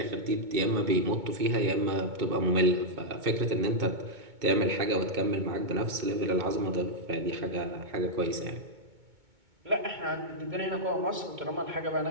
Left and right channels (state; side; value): late; left; 2.2 ms